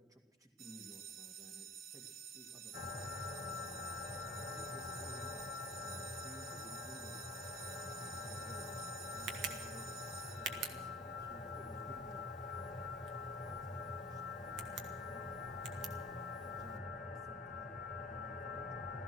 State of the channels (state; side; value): normal; both; correlation 0.43